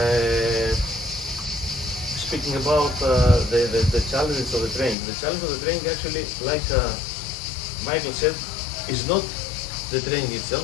Speaking about the challenges of the training, actually, like Michael said, is not the training itself,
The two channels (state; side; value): drops out; right; at 5.0 s